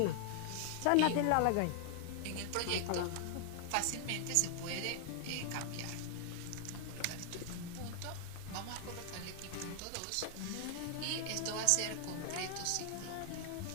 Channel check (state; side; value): different; both; correlation 0.00